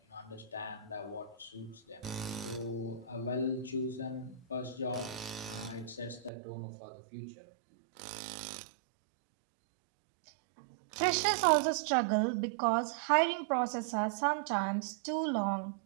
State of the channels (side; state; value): left; drops out; at 6.3 s